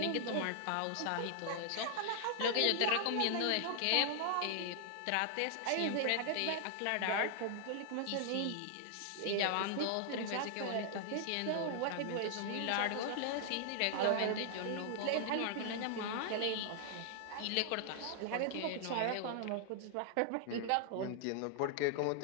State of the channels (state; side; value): different; both; correlation -0.01